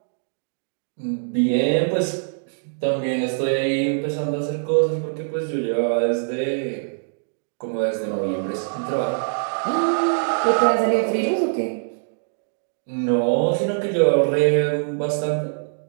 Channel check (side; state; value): left; silent; digital silence